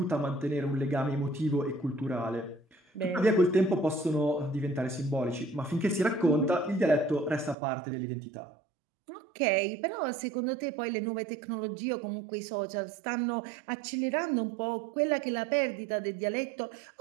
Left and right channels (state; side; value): drops out; left; at 7.6 s